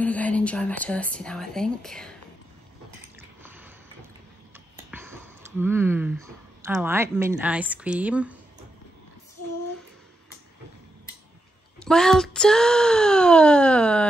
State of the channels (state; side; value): normal; both; correlation 0.85